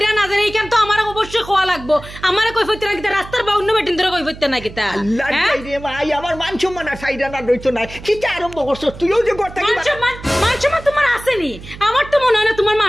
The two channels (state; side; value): noise; right; hum, 15 dB below the sound